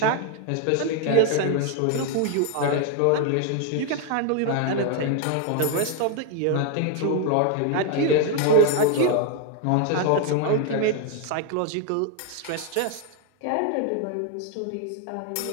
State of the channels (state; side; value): different; both; correlation 0.01